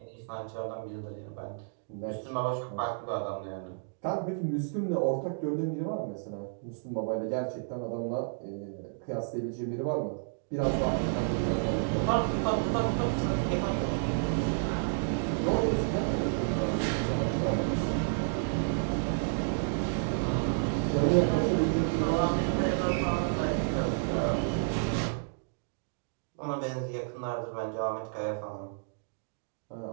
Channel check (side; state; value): left; silent; digital silence